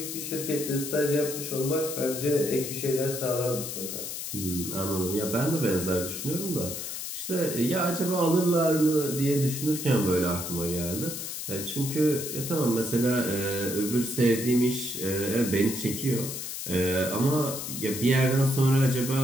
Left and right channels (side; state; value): left; noise; hiss, 6 dB below the sound